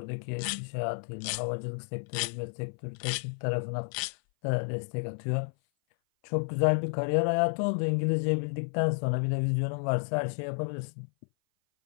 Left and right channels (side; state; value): right; silent; 56 dB below the other